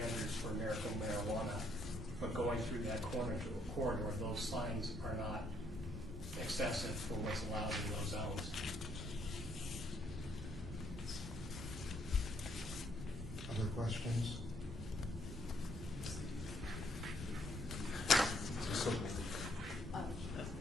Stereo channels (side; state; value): both; normal; correlation 0.70